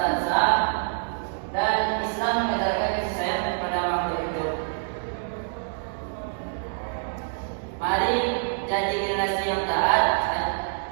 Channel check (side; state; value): left; silent; digital silence